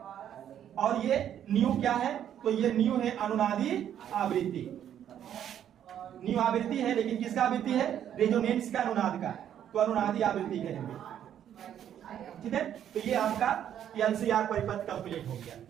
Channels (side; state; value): left; quieter; 10.0 dB